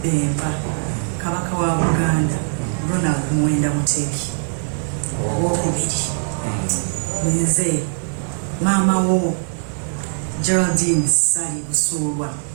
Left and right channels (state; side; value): silent; left; digital silence